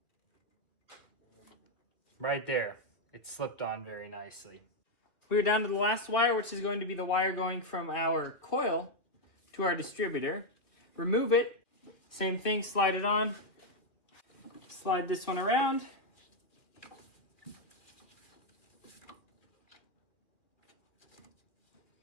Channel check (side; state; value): right; late; 2.2 ms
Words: right there. It slipped on very nicely. We're down to the last wire, which is going to be the wire going from our coil to our distributor. Remove it. Same thing, slide it on. Slide this one around.